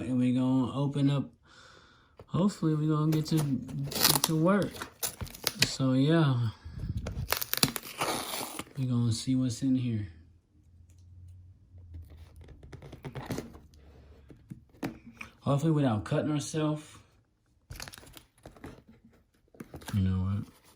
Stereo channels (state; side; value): identical; both; correlation 1.00